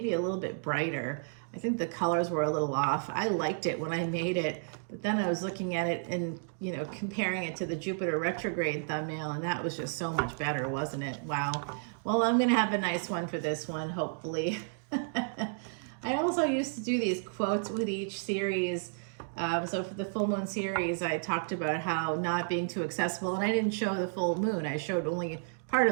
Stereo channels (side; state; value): left; silent; digital silence